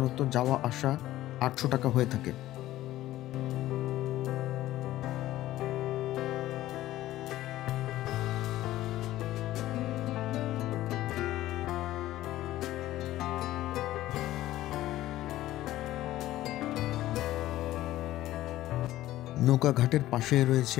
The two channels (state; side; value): quieter; right; 15.0 dB